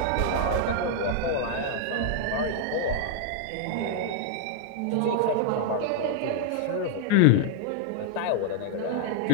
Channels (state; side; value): different; both; correlation 0.00